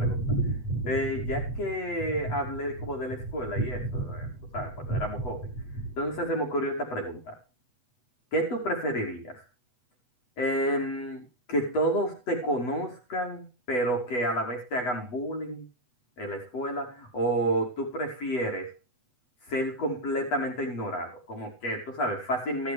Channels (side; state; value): right; late; 8.1 ms